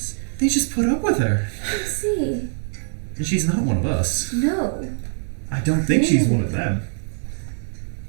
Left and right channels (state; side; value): silent; left; digital silence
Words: They just put up with her. I see. And she's not one of us. No. I don't think she's one of them.